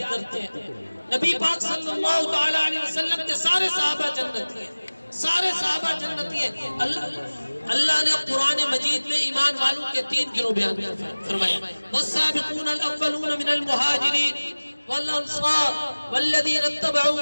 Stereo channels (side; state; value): both; inverted; correlation -1.00